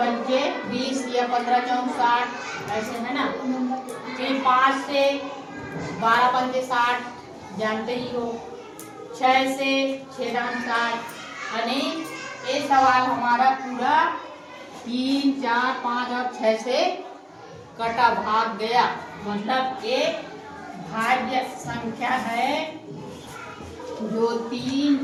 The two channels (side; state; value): both; identical; correlation 1.00